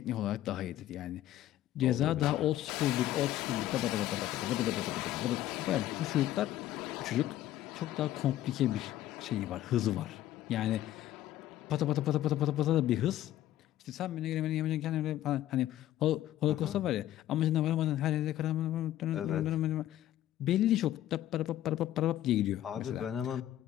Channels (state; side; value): quieter; right; 13.3 dB